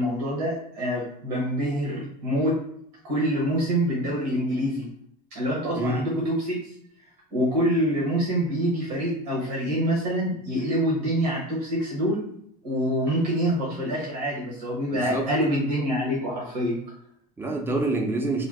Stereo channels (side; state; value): both; normal; correlation 0.34